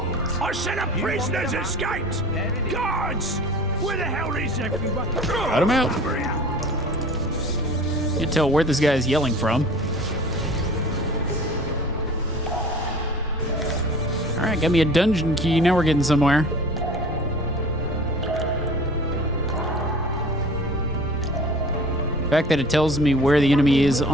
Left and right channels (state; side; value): normal; both; correlation 0.43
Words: I said a prisoner's escaped! Guards! Where the hell is everyone? Cut him out. Can't tell where this guy's yelling from. Alright, got me a dungeon key. Now we're getting somewhere. The fact that it tells me where the enemy is